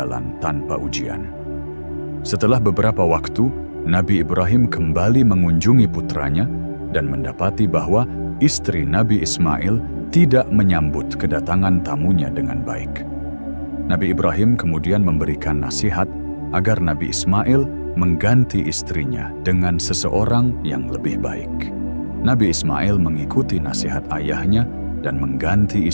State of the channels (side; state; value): both; inverted; correlation -1.00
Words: tanpa ujian. Setelah beberapa waktu, Nabi Ibrahim kembali mengunjungi putranya dan mendapati bahwa istri Nabi Ismail tidak menyambut kedatangan tamunya dengan baik. Nabi Ibrahim kemudian memberikan nasihat agar Nabi Ismail mengganti istrinya dengan seseorang yang lebih baik. Nabi Ismail mengikuti nasihat ayahnya dan mengganti